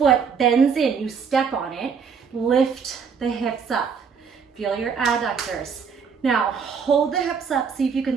bends in. You step on it, lift the hips up. Feel your adductors. Now, hold the hips up, see if you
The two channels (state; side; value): quieter; left; 6.2 dB